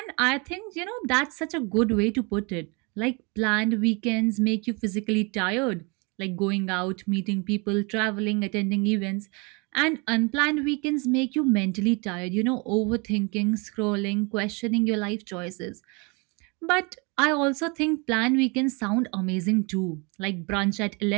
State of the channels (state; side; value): quieter; left; 30.4 dB